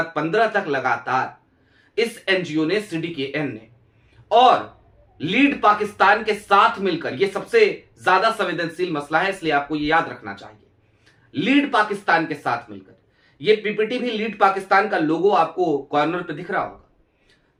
तक लगातार इस एनजीओ ने, CDKN ने और लीड पाकिस्तान के साथ मिलकर, यह सबसे ज्यादा संवेदनशील मसला है इसलिए आपको यह याद रखना चाहिए, लीड पाकिस्तान के साथ मिलकर ये पीपीटी भी लीड पाकिस्तान का लोगो आपको कॉर्नर पे दिख रहा होगा।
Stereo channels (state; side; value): identical; both; correlation 1.00